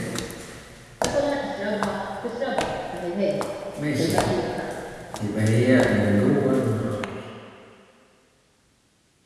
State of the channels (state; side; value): identical; both; correlation 1.00